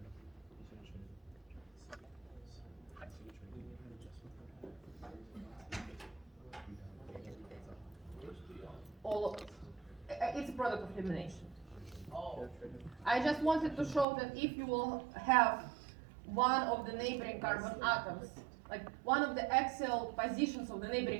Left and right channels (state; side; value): drops out; left; at 14.1 s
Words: it's a product of elimination. I just wanted to show that if you will have one of the neighboring carbon atoms, like one of the axial positions of the